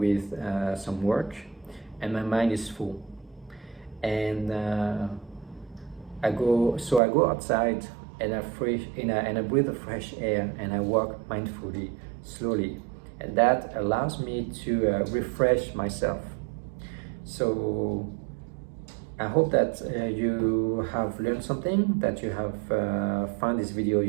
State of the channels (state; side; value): drops out; left; at 7.0 s